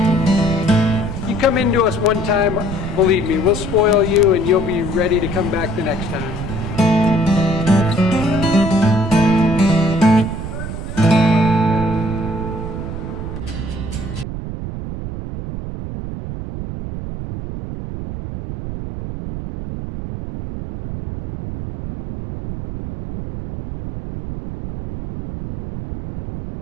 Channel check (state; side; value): noise; right; rumble, 7 dB below the sound